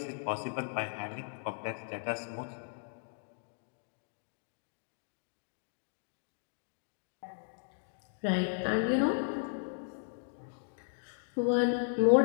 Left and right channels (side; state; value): right; silent; digital silence